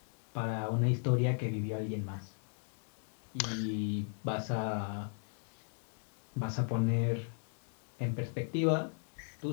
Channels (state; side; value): silent; right; 53 dB below the other